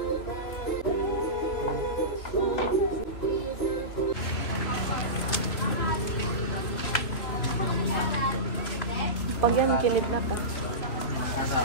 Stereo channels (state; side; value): late; right; 3.0 ms